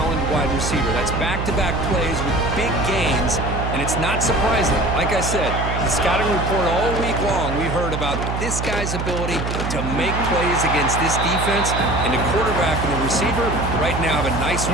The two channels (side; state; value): right; noise; hum, 3 dB below the sound